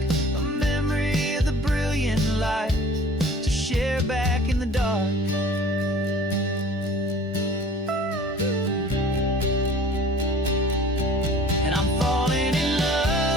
a memory of the brilliant light to share back in the dark. And I'm falling in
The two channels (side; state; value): both; normal; correlation 0.47